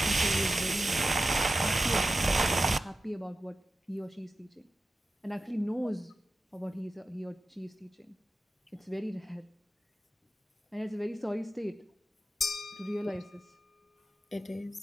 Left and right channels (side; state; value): both; normal; correlation 0.92